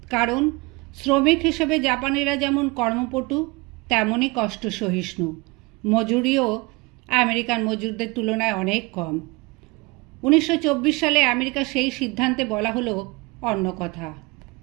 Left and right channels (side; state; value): left; quieter; 25.3 dB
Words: কারণ শ্রমিক হিসেবে জাপানিরা যেমন কর্মপটু তেমনই কষ্ট সহিষ্ণু। মজুরিও আমেরিকান মজুরদের তুলনায় অনেক কম। 1924 সালে আমেরিকা সেই সিদ্ধান্তে বলা হলো অন্য কথা।